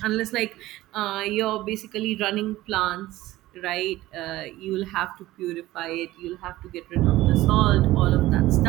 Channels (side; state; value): left; quieter; 16.7 dB